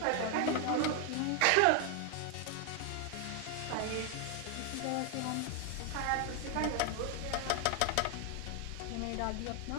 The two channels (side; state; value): both; different; correlation 0.00